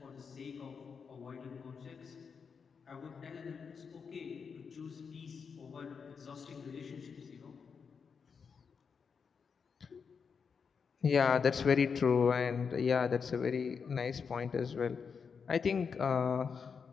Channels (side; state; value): right; quieter; 6.0 dB